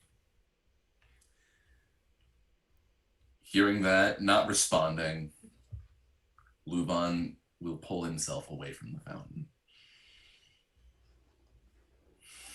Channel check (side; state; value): both; identical; correlation 1.00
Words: Hearing that, not responding, LuVon will pull himself away from the fountain.